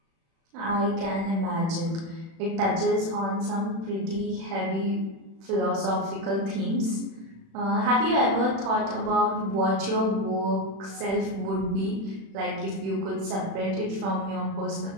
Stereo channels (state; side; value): late; left; 36 ms